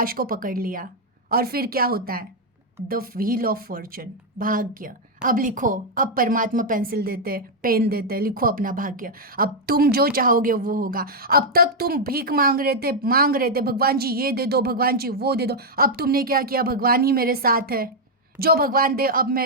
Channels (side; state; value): both; normal; correlation -0.02